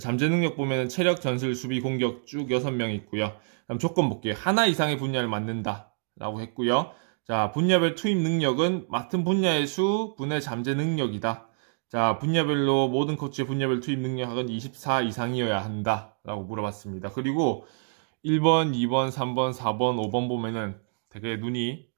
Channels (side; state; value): left; silent; digital silence